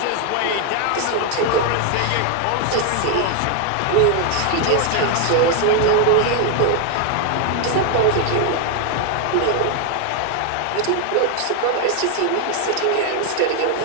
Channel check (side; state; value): both; different; correlation 0.01